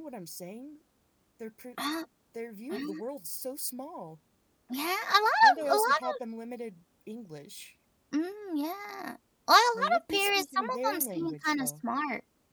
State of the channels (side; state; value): both; identical; correlation 1.00